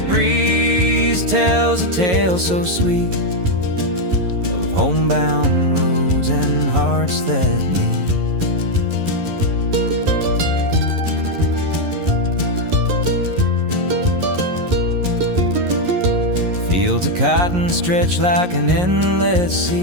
breeze tells a tale so sweet of homebound roads and hearts that meet. Fields of cotton stretch like an endless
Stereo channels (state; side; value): late; left; 11 ms